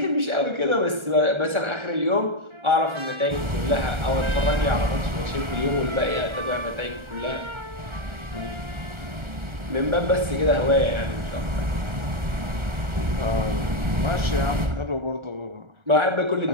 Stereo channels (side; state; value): left; late; 1.4 ms